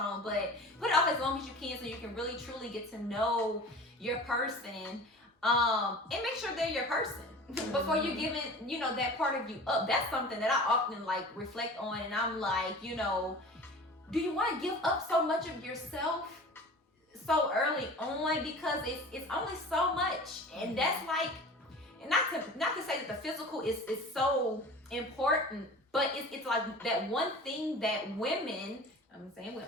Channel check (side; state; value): both; normal; correlation 0.39